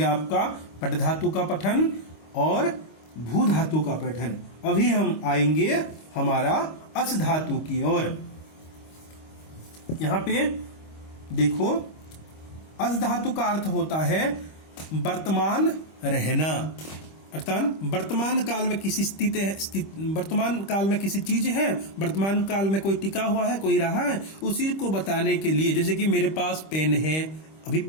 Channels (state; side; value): late; right; 25 ms